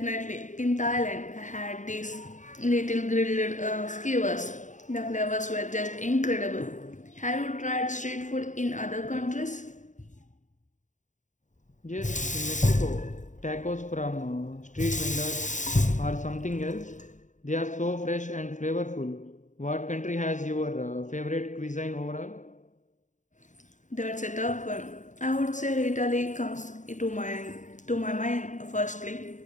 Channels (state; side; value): late; right; 0.36 ms